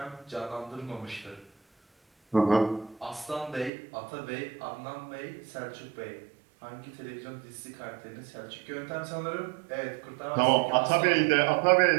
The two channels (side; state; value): left; drops out; at 3.7 s